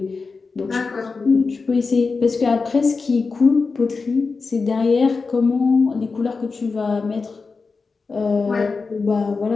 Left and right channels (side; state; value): right; quieter; 4.4 dB